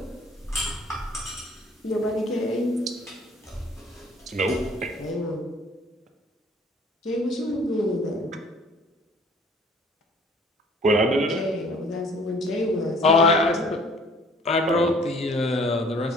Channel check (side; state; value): both; normal; correlation 0.54